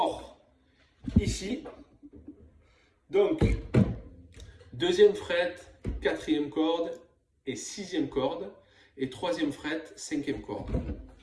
ici. Donc, 2e fret, 4e corde et 6e corde. Et 3e fret, 5e corde.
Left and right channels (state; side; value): identical; both; correlation 1.00